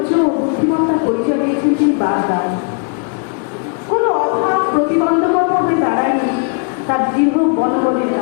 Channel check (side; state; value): right; quieter; 39.7 dB